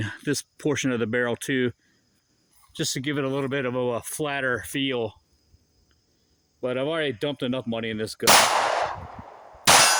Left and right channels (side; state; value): both; identical; correlation 1.00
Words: this portion of the barrel too, just to give it a little bit of a flatter feel. But I've already dumped enough money in this gun.